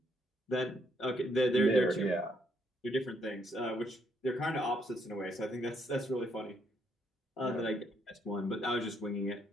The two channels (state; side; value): normal; both; correlation 0.72